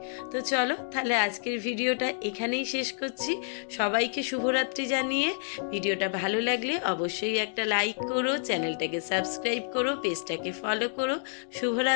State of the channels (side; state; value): right; silent; digital silence